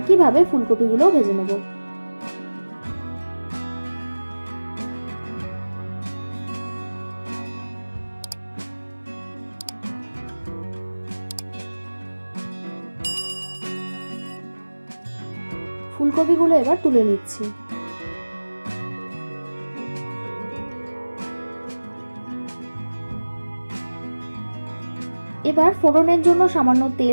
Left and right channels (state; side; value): inverted; both; correlation -1.00